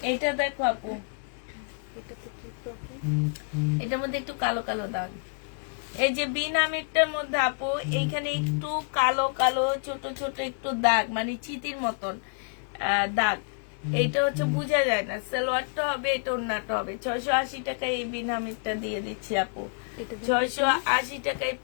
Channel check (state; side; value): silent; right; 59 dB below the other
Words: এটা দেখো আপু, এটার মধ্যে একটু কালো কালো দাগ। এই যে বিনামিরটার মধ্যে আপু, এইখানে একটু কালো কালো ছোট ছোট একটু দাগ, মানে চিতির মতন দাগ। এইটা হচ্ছে বোঝা যায় না। সালোয়ারটা হবে, এটা ওড়নাটা হবে। 680 টাকায় এই বিনামিরটা দিয়ে দিচ্ছি আপু, 680 টাকায়